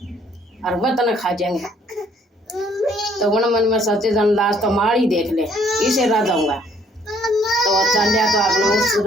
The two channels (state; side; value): normal; both; correlation 0.63